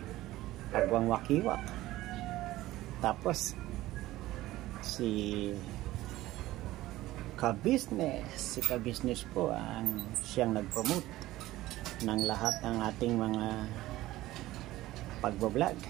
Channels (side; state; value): left; quieter; 16.5 dB